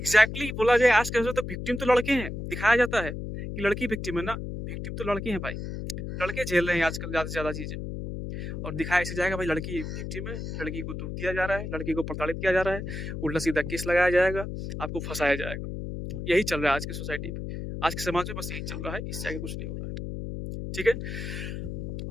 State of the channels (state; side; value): noise; left; hum, 6 dB below the sound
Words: बोला जाए आज के तो विक्टिम तो लड़के हैं, दिखाया जाता है कि लड़की विक्टिम है ना। विक्टिम तो लड़के हैं भाई। लड़के झेल रहे हैं आजकल ज्यादा से ज्यादा चीजें। और दिखाया ऐसे जाएगा भाई लड़की विक्टिम है, लड़की को दुख दिया जा रहा है, लड़की को प्रताड़ित किया जा रहा है, उल्टा सीधा केस लगाया जाएगा, आपको फंसाया जाएगा। यही चल रहा है आज की सोसाइटी पे, आज के समाज में बस यही चल रहा है, इससे आगे कुछ नहीं हो रहा है। ठीक है।